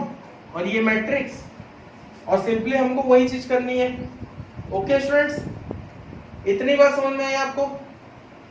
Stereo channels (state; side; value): identical; both; correlation 1.00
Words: और ये मैट्रिक्स, और सिंपली हमको वही चीज करनी है. ओके स्टूडेंट्स, इतनी बात समझ में आई आपको?